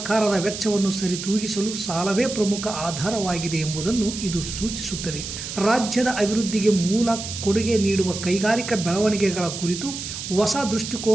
ವೆಚ್ಚವನ್ನು ಸರಿತೂಗಿಸಲು ಸಾಲವೇ ಪ್ರಮುಖ ಆಧಾರವಾಗಿದೆ ಎಂಬುದನ್ನು ಇದು ಸೂಚಿಸುತ್ತದೆ. ರಾಜ್ಯದ ಅಭಿವೃದ್ಧಿಗೆ ಮೂಲ ಕೊಡುಗೆ ನೀಡುವ ಕೈಗಾರಿಕಾ ಬೆಳವಣಿಗೆಗಳ ಕುರಿತು ಹೊಸ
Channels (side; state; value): right; noise; hiss, 7 dB below the sound